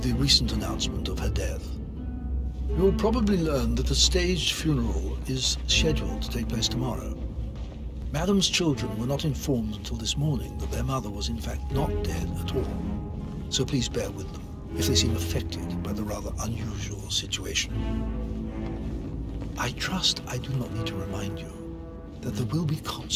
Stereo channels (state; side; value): identical; both; correlation 1.00